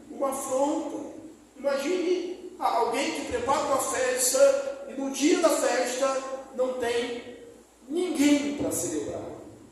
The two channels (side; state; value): both; identical; correlation 1.00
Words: uma afronta. Imagine alguém que prepara uma festa e no dia da festa não tem ninguém para celebrar.